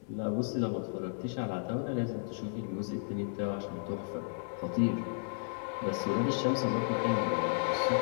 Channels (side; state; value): right; silent; 55 dB below the other